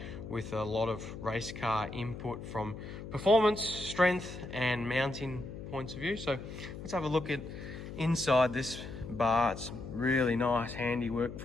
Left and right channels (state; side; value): noise; left; hum, 10 dB below the sound